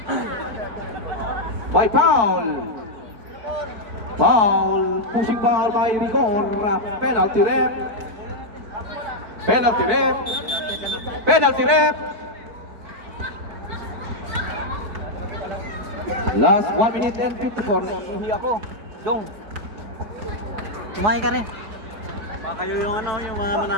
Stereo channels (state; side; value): late; left; 4.5 ms